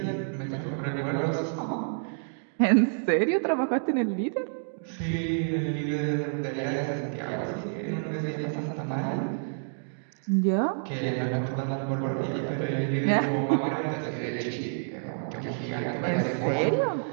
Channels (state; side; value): silent; left; digital silence